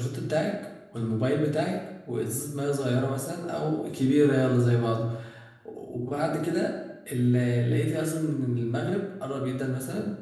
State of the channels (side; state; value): both; identical; correlation 1.00